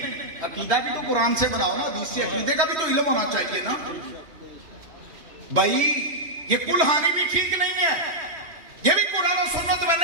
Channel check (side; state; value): left; late; 3.1 ms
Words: عقیدہ بھی تو قرآن سے بناؤ نا, حدیث سے. عقیدے کا بھی تو علم ہونا چاہیے نا بھائی. یہ کل خوانی بھی ٹھیک نہیں ہے, یہ بھی قرآن و سنت میں